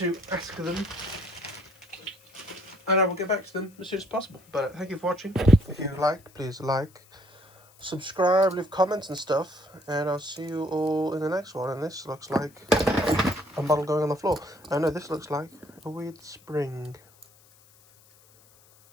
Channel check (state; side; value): noise; left; hiss, 28 dB below the sound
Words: ask them. And I will get back to them as soon as possible. But thank you for watching. If you like, please like, subscribe, leave comments and stuff. And I'll see you all in the next one. And this looks like a model going on the floor. I know this looks like a weird spring.